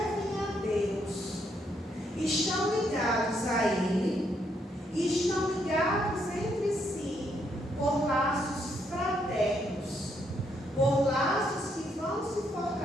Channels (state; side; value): normal; both; correlation 0.74